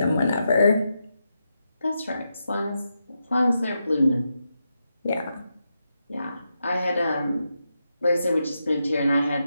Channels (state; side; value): inverted; both; correlation -0.85